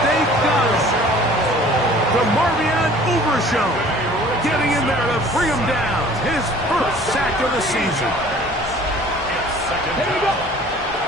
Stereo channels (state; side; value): normal; both; correlation 0.49